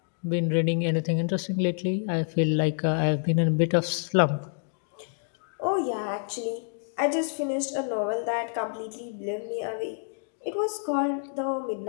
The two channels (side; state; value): right; silent; 60 dB below the other